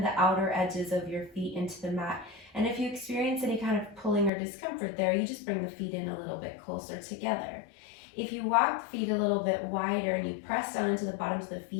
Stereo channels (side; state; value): right; drops out; at 4.3 s